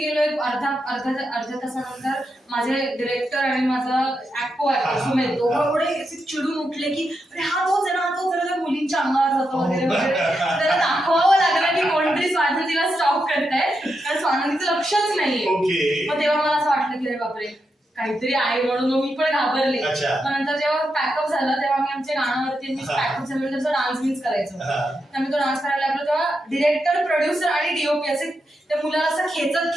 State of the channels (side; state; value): both; normal; correlation 0.85